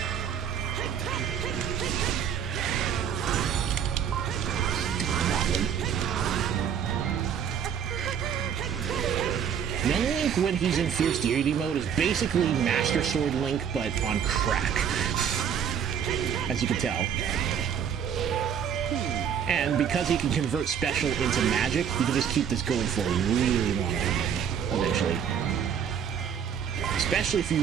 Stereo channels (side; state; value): left; quieter; 8.1 dB